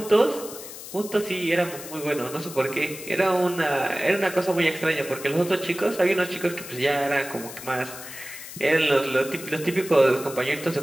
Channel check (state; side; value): noise; left; hiss, 12 dB below the sound